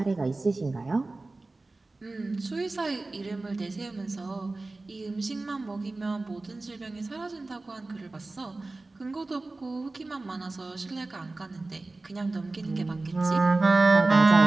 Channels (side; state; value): left; quieter; 3.2 dB